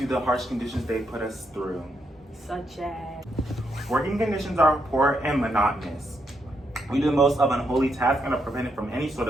the harsh conditions they put us through. Such as? Working conditions are poor and monotonous. We do the most of unholy tasks and are prevented from any sort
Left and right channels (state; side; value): normal; both; correlation 0.79